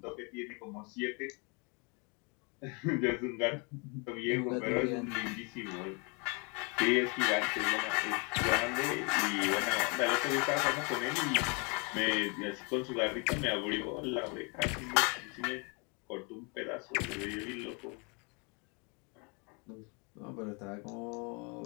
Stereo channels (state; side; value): quieter; right; 32.9 dB